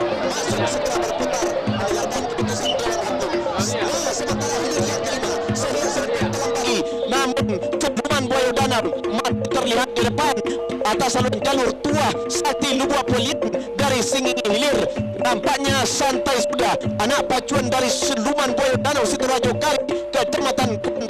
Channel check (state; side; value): identical; both; correlation 1.00